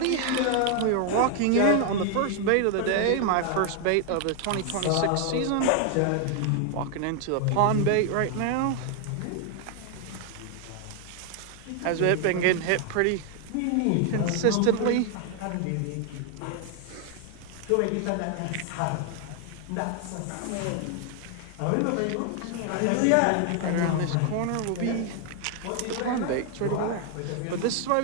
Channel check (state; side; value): different; both; correlation 0.00